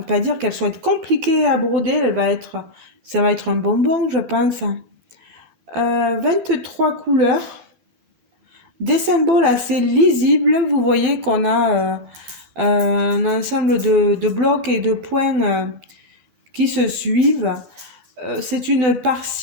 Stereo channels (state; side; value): late; left; 12 ms